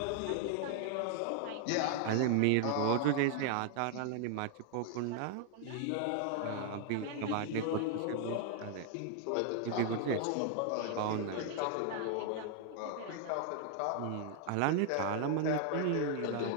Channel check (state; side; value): different; both; correlation 0.00